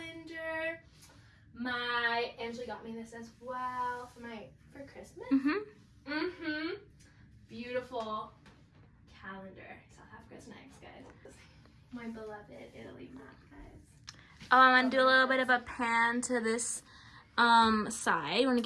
Angela got me this as well for Christmas. Beautiful calendar. South Africa's next, guys. My beloved Italy map, guys. Oh, I want to do a little bit of a pan to this side. Want to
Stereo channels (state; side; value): identical; both; correlation 1.00